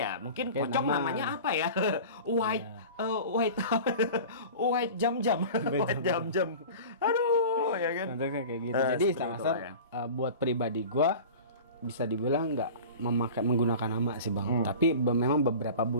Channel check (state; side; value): inverted; both; correlation -0.37